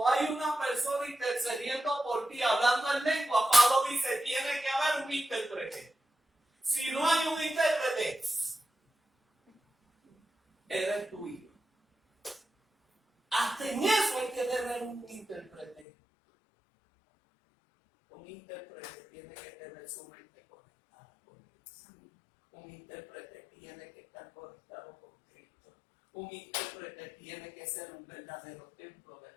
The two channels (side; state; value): right; drops out; at 15.9 s